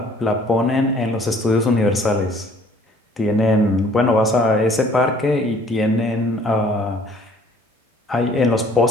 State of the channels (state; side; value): normal; both; correlation 0.57